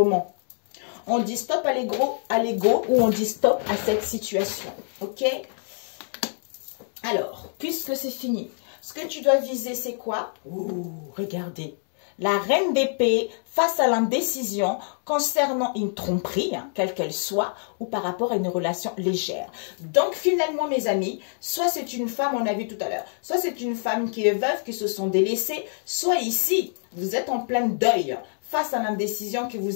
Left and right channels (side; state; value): right; silent; digital silence